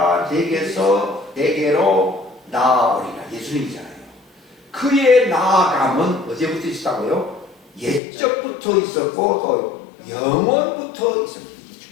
내게로 나아오리라. 예수님이잖아요. 그의 나아감은 언제부터 있었다고요? 옛적부터 있었고 또 영원부터 있었습니다.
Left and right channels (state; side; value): drops out; right; at 8.0 s